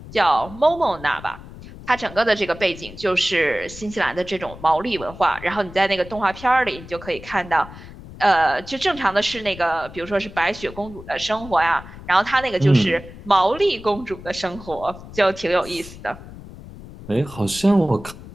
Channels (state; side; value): noise; left; rumble, 16 dB below the sound